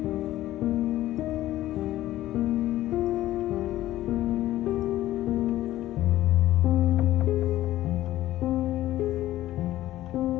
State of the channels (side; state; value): right; quieter; 14.7 dB